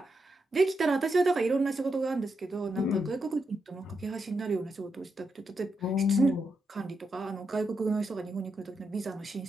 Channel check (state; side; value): normal; both; correlation 0.84